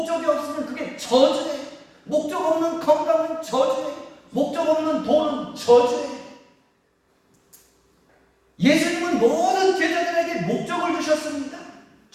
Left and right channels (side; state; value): both; identical; correlation 1.00